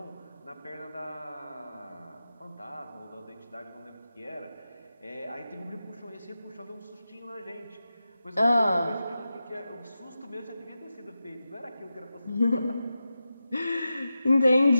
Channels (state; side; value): inverted; both; correlation -0.92